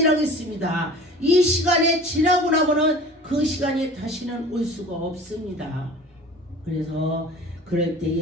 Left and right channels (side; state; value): both; normal; correlation 0.42